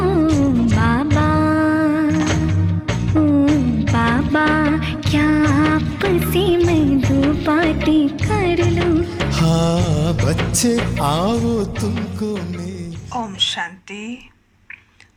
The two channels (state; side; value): identical; both; correlation 1.00